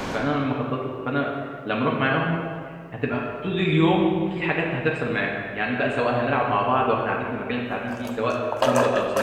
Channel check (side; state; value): both; identical; correlation 1.00